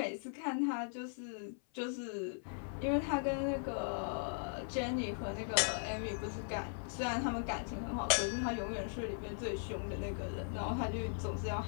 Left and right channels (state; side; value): silent; right; 52 dB below the other